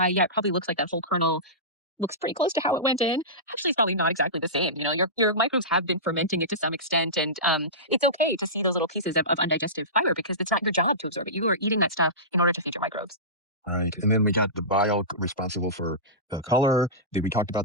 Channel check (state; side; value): normal; both; correlation -0.19